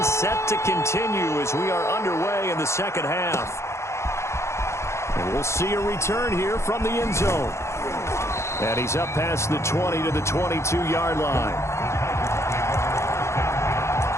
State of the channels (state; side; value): late; right; 0.13 ms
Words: set to continue as we are underway in the second half. And we'll see a return here from the end zone. And he's up past the 20 to the 22-yard line.